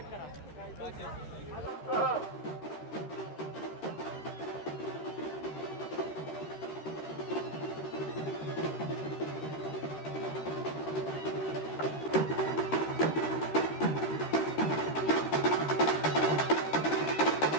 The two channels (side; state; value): right; late; 13 ms